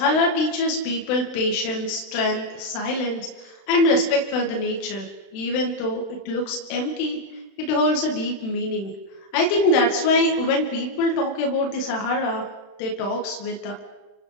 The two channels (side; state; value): right; late; 35 ms